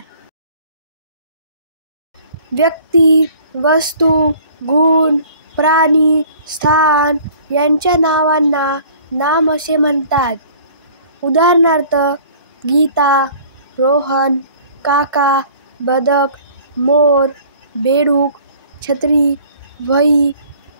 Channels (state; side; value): inverted; both; correlation -0.51